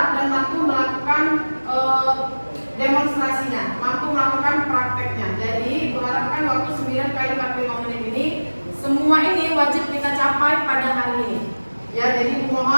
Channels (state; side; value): inverted; both; correlation -1.00